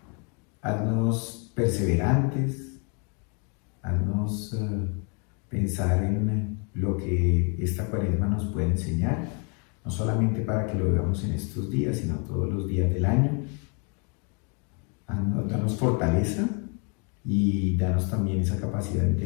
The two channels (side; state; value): right; quieter; 36.4 dB